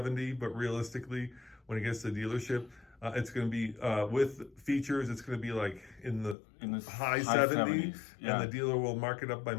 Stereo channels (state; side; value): drops out; right; at 6.4 s